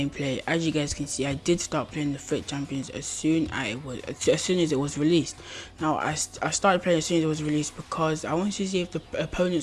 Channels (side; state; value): both; identical; correlation 1.00